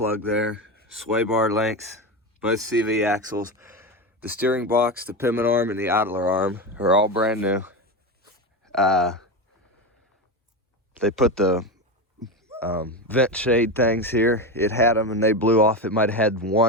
there, sway bar links, both CV axles. The steering box, the pivot arm, and the idler arm are all brand new. They put the vent shade things here. It had them and they blew off. It might have had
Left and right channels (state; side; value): normal; both; correlation 0.19